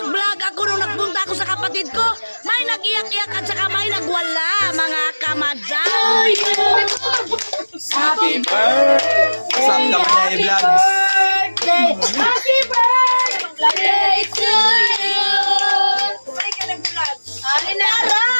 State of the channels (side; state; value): both; inverted; correlation -1.00